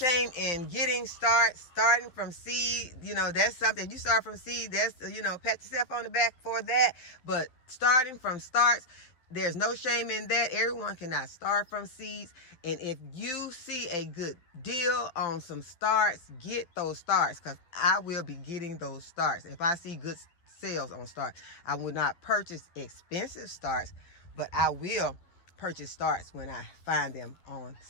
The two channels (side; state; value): right; late; 12 ms